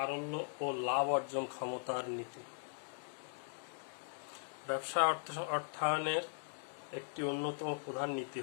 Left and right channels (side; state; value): right; silent; digital silence